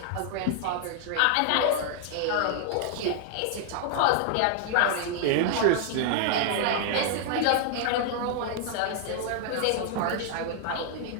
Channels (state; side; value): different; both; correlation -0.01